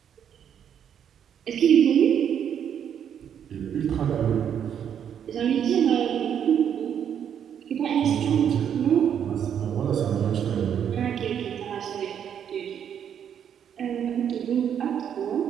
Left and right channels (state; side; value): quieter; left; 8.7 dB